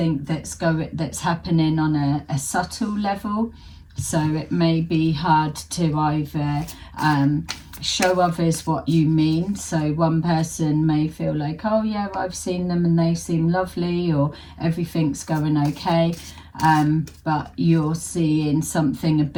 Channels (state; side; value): identical; both; correlation 1.00